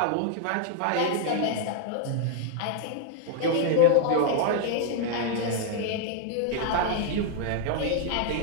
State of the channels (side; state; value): both; different; correlation 0.00